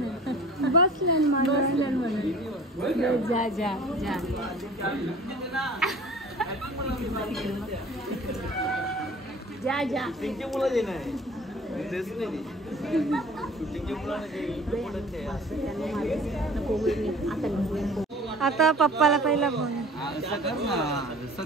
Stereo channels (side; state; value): both; normal; correlation 0.45